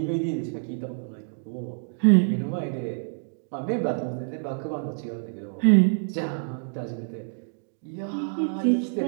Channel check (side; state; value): left; silent; digital silence